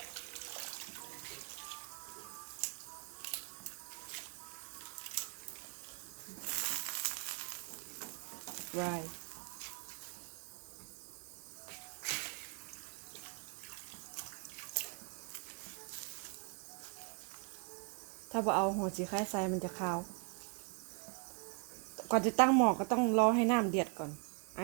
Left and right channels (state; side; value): quieter; left; 39.1 dB